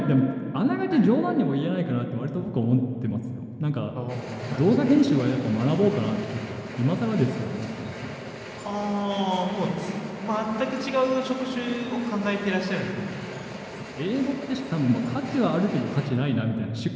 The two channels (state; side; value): identical; both; correlation 1.00